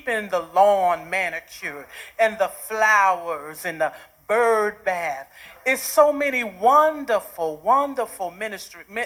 the lawn manicured and the flowers and the bird bath. It's so many wonderful, wonderful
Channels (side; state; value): both; identical; correlation 1.00